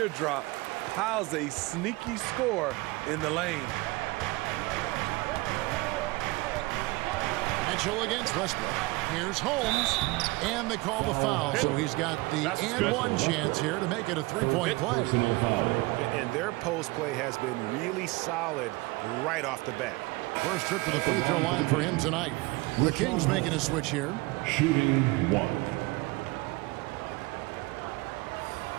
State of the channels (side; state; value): left; quieter; 22.7 dB